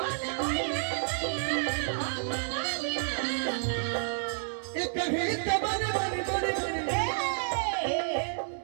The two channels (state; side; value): silent; left; 58 dB below the other